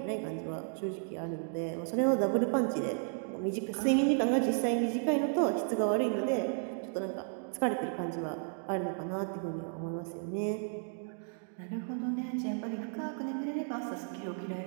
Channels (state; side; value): silent; left; 55 dB below the other